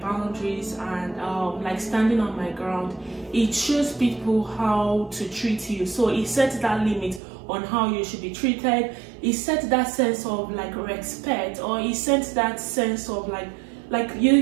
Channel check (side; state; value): left; drops out; at 7.2 s